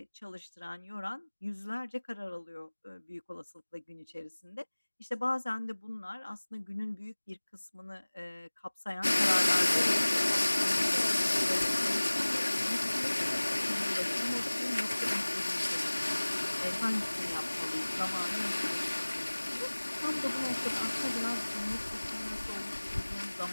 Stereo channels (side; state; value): both; inverted; correlation -1.00